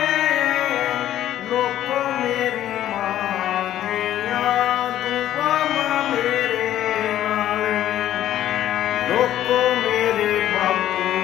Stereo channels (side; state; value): right; quieter; 12.3 dB